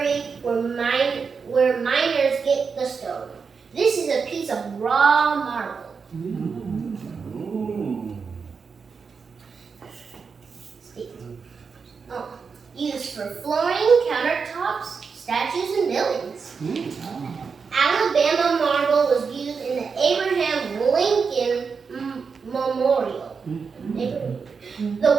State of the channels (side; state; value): left; quieter; 5.5 dB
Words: where miners get the stone. This is a piece of raw marble. Used for flooring, countertops, statues, and buildings. Alabama marble was used in the Abraham Lincoln Memorial. The